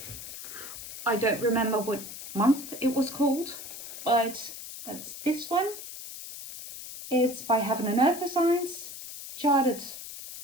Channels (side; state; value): left; noise; hiss, 11 dB below the sound